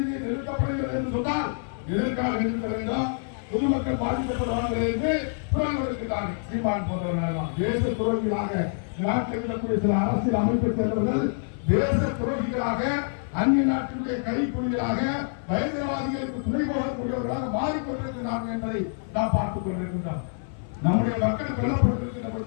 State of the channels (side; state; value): right; silent; 56 dB below the other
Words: நிறுத்தப்படுகிறது என்று சொன்னால் எதற்காக நிறுத்த வேண்டும்? பொதுமக்கள் பாதிக்கப்படுவார்கள் என்று குரல் கொடுக்கிறார்கள். சீமான் போன்றவர்கள் தேச துரோகிகளாக நாட்டில் இருக்கக்கூடிய சில அரசியல் அமைப்பை சேர்ந்தவர்கள் தேச துரோகிகளாக, அந்நிய நாட்டினுடைய கைக்குலிகளாக, பயங்கரவாதிகளுக்கு துணை போகக்கூடியவர்களாக மாறிக்கொண்டிருக்கிறார்கள் என்பதை நாம் பார்த்துக் கொண்டிருக்கின்றோம். நம்முடைய மக்கள் கொல்லப்பட்டிருக்கின்ற